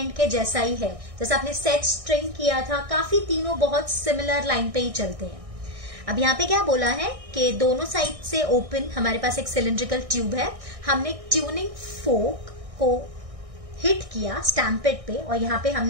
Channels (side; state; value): left; late; 1.6 ms